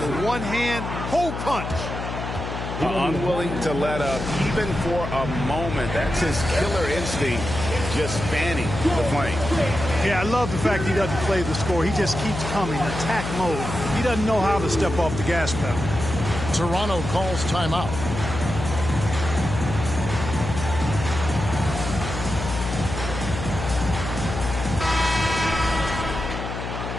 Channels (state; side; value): noise; left; hum, 6 dB below the sound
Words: One hand, hole punch. Unwilling to let up even for a moment. That's his killer instinct, just fanning the flame. Yeah, I love the fact he doesn't play the score. He just keeps coming, attack mode. He doesn't know how to step off the gas pedal. Toronto calls timeout.